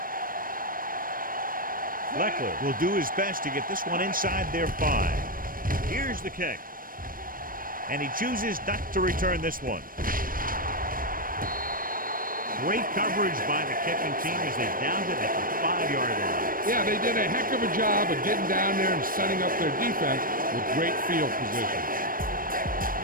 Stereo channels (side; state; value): left; late; 0.41 ms